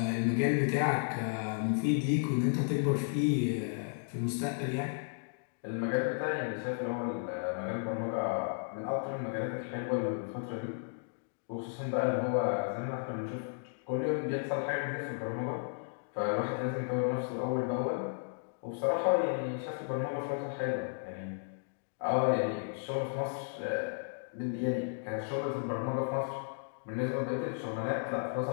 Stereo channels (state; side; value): silent; right; digital silence